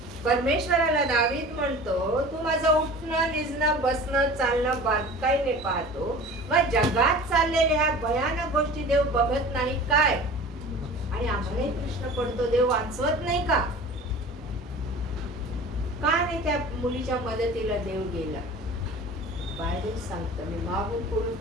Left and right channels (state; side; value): normal; both; correlation 0.40